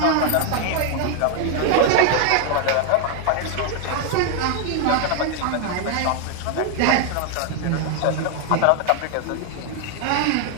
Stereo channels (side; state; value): both; different; correlation 0.00